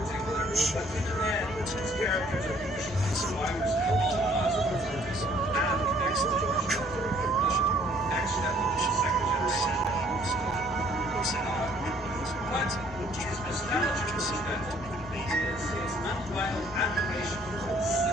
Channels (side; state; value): both; normal; correlation 0.60